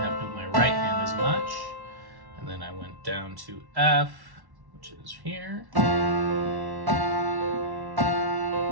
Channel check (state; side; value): late; left; 1.1 ms